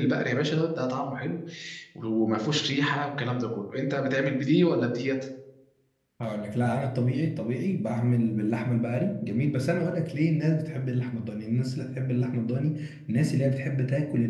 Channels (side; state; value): both; identical; correlation 1.00